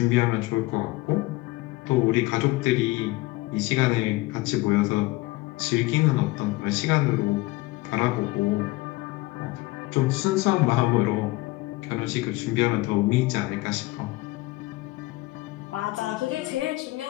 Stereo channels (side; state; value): right; quieter; 20.5 dB